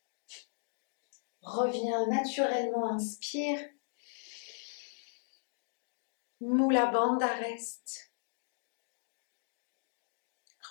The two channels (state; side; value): silent; right; digital silence